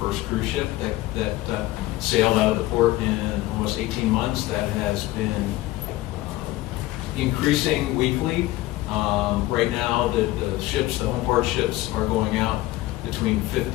cruise ship that sailed out of the port in almost 18 months. That has been increasing weekly. Right now, the ships, the home port ships, are going out between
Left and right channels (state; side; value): quieter; right; 17.3 dB